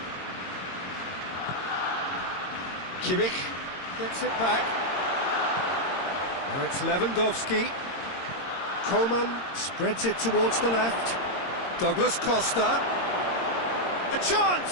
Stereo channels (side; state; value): right; late; 22 ms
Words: Kimmich gets it back. Now it's Lewandowski. Coman spreads it towards the left. Douglas Costa. A